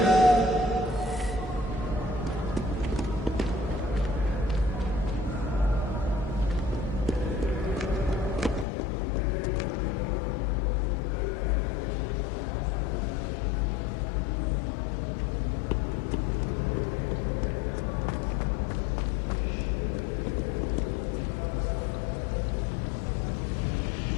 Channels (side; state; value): right; drops out; at 8.7 s